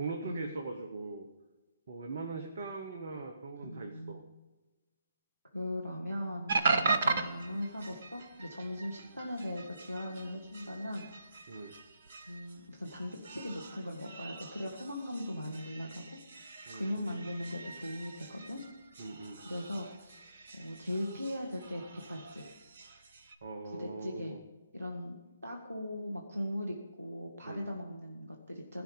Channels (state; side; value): inverted; both; correlation -0.80